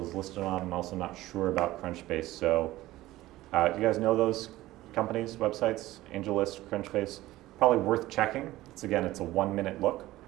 is listed on. I'm also not sure about Crunchbase. So do you guys know those companies, websites? AngelList, Crunchbase? Probably worth checking. It's a 1-minute look,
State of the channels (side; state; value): left; quieter; 16.7 dB